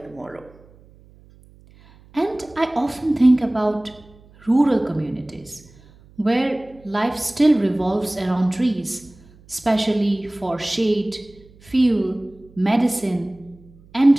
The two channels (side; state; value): right; noise; hum, 26 dB below the sound